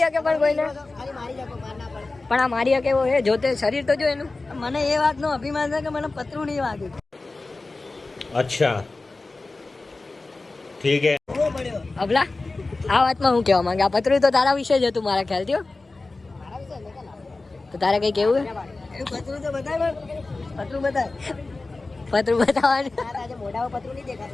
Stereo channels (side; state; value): right; quieter; 3.4 dB